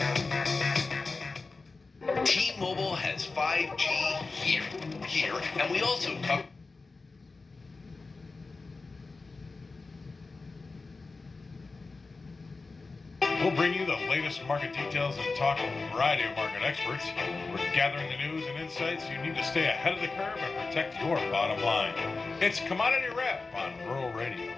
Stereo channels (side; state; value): right; quieter; 3.9 dB